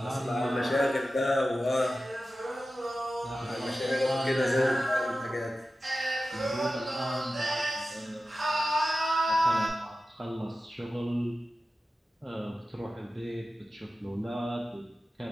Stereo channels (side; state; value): both; normal; correlation 0.94